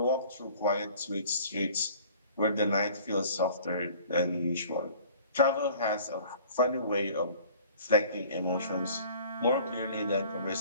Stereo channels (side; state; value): both; inverted; correlation -0.49